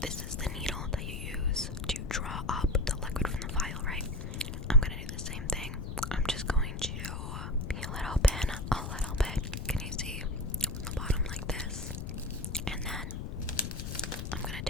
this is the needle that you use to draw up the liquid from the vial, right? I'm gonna do the same thing. I'm just going to peel it open a little bit. Can you see from the bottom like this? And then I'm gonna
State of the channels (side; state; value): left; noise; rumble, 5 dB below the sound